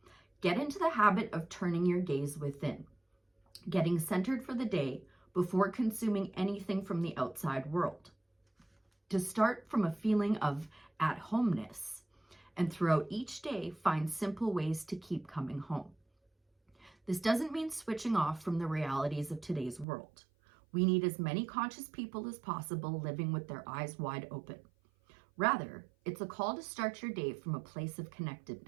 Get into the habit of turning your gaze within, getting centered for the day before consuming anything from the outside world. To start from a feeling of at-homeness, and throughout each day, find simple ways to keep coming home. This doesn't mean switching off from the realities of today's world. We need as many conscious people as possible living with their eyes wide open. Rather, it's a call to start your day from a place of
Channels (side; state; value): left; drops out; at 19.9 s